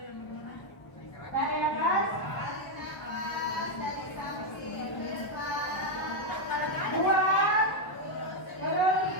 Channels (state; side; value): late; right; 1.0 ms